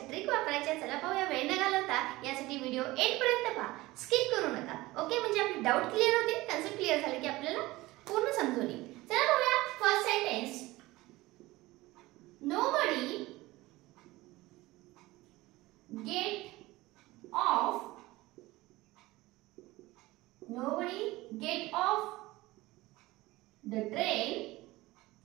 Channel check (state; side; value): quieter; left; 19.3 dB